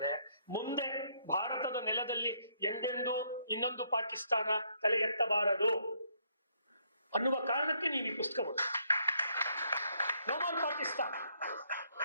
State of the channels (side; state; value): both; inverted; correlation -0.71